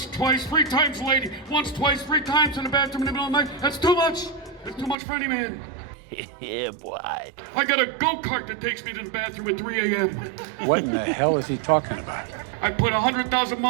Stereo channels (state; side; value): drops out; left; at 5.0 s